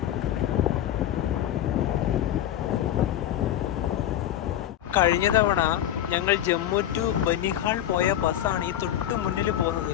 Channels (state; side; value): quieter; right; 11.5 dB